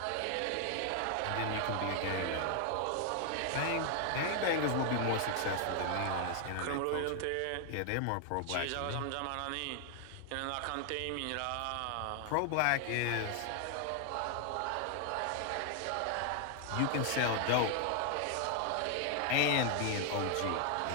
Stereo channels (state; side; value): different; both; correlation 0.00